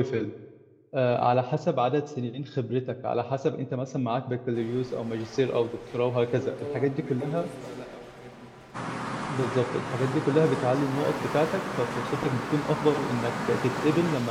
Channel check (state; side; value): identical; both; correlation 1.00